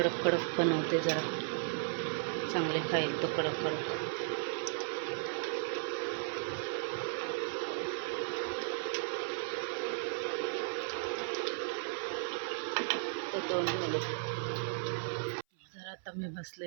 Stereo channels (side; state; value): left; silent; 54 dB below the other